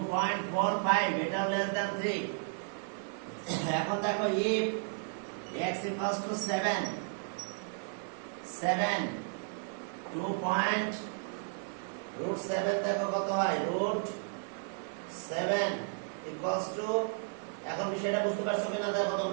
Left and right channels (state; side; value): silent; left; 55 dB below the other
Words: এটা লেস দ্যান 3। এখন দেখো if x equals to 7, 2.7 দেখো কত হয়, √7 equals to, এখন বিষয়টা বুঝতে পারছো কিনা দেখো